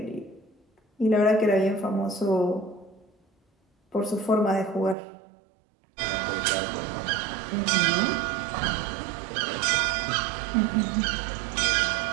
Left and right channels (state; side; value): drops out; left; at 5.0 s